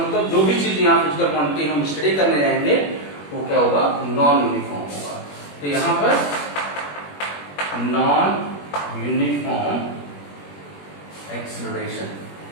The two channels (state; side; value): late; right; 21 ms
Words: जो भी चीज यहाँ फिजिकल क्वांटिटी हम स्टडी करने जाएंगे वो क्या होगा, नॉन यूनिफॉर्म होगा। तो यहाँ पर non uniform acceleration,